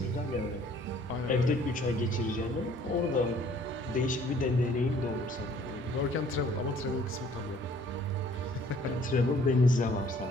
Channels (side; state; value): both; normal; correlation 0.57